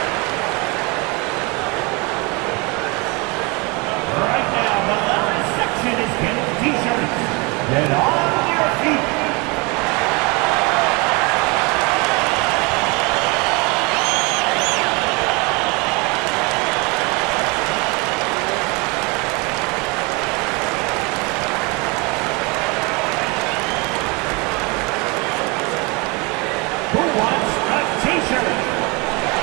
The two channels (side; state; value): left; quieter; 28.3 dB